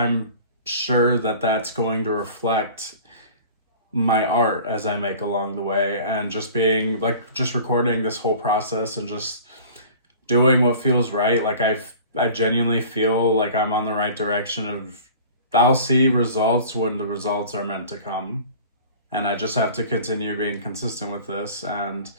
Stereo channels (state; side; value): inverted; both; correlation -0.43